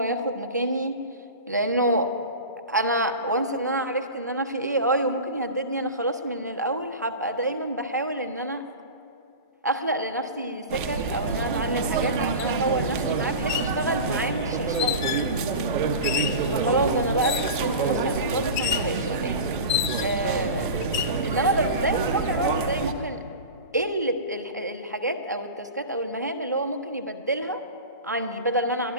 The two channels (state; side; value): inverted; both; correlation -0.31